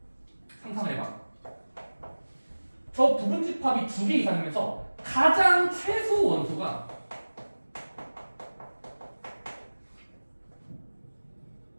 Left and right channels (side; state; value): both; inverted; correlation -1.00